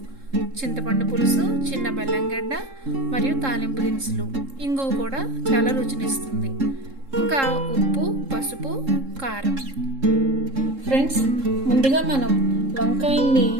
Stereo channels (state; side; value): late; left; 3.7 ms